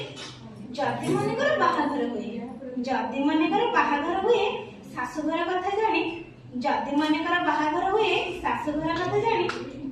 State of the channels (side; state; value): both; identical; correlation 1.00